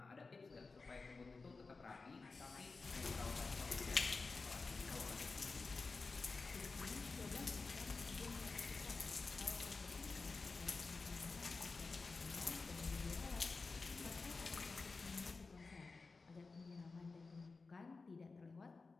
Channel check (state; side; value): quieter; right; 4.1 dB